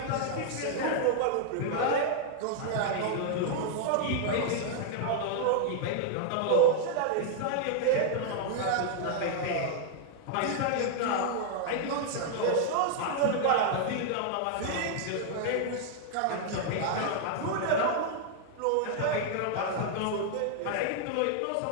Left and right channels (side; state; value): both; different; correlation -0.01